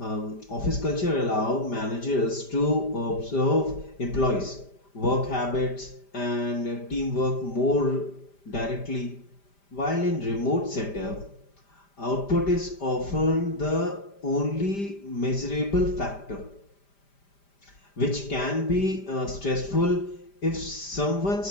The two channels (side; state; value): right; late; 5.0 ms